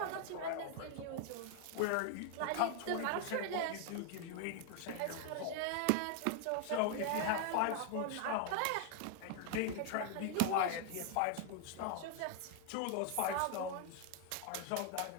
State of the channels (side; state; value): both; different; correlation 0.00